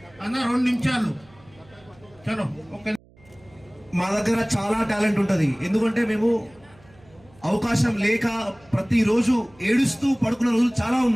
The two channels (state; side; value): noise; right; hum, 28 dB below the sound